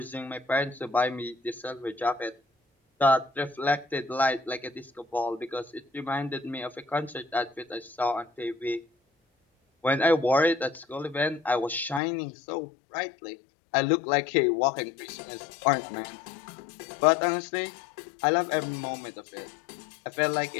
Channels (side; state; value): right; drops out; at 12.0 s